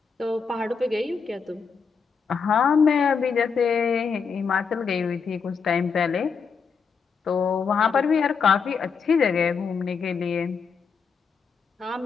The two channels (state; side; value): quieter; right; 5.7 dB